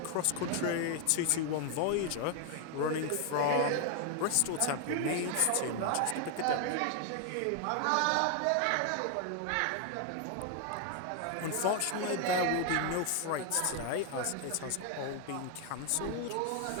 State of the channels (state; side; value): different; both; correlation 0.00